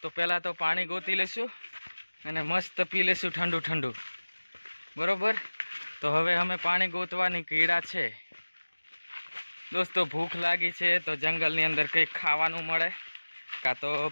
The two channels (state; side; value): inverted; both; correlation -1.00